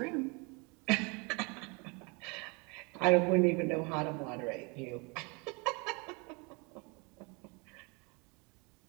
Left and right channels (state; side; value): quieter; left; 30.1 dB